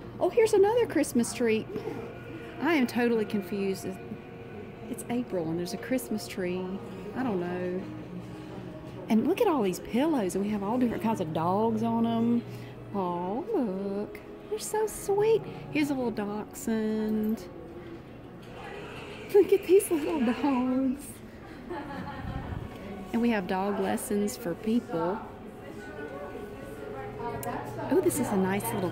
Oh, here's another Christmas tree. I am totally confused. It's April and there's a Christmas tree. I don't know. And look at all these pillows. And we have all different kinds of dogs on them. Oh, look. They're so sweet. Here's a little dachshund. Look at these little dogs. And we have dog lessons for people. Oh, this is a nice little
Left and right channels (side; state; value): both; identical; correlation 1.00